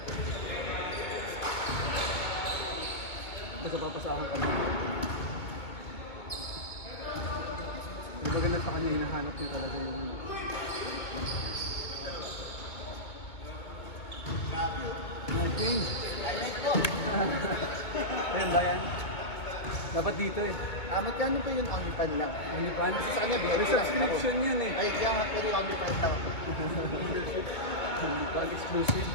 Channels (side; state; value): right; late; 2.2 ms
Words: Basta papasahan ka na. Yung maganda sa kanya, hinahanap niya talaga yung... Change! Ayun ba yan? Dapat dito eh. Magkano pa yun OnlyFan lang? OnlyFans? Sa kanya, May subscription yun eh. Ay, kaya nga pwede OnlyFan daw. OnlyFans exclusive.